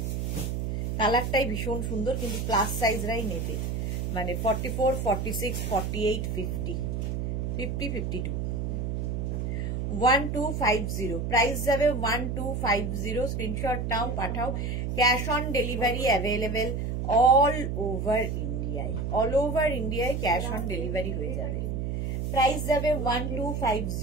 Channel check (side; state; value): right; noise; hum, 1 dB below the sound